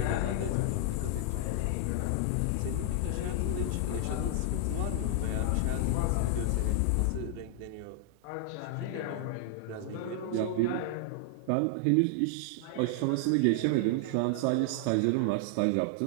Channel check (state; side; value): different; both; correlation 0.00